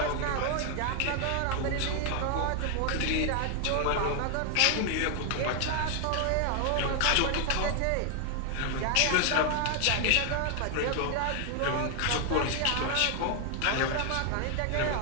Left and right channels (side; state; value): both; different; correlation 0.00